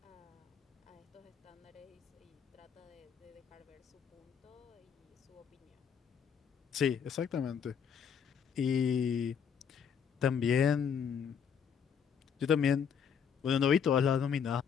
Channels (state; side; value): quieter; right; 7.3 dB